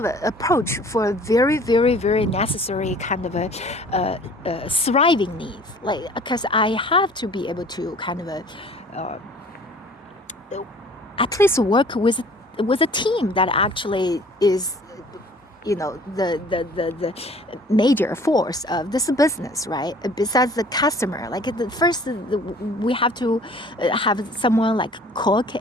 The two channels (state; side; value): normal; both; correlation 0.50